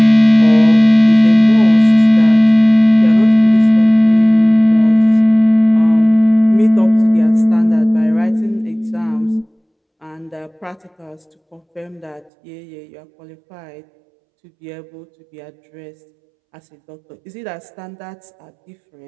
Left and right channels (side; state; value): left; drops out; at 12.3 s